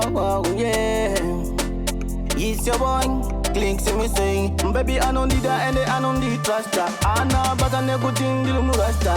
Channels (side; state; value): both; identical; correlation 1.00